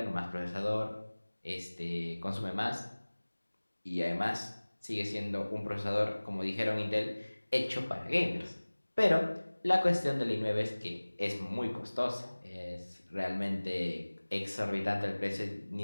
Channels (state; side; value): inverted; both; correlation -1.00